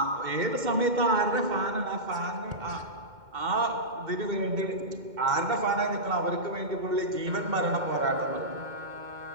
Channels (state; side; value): late; left; 2.1 ms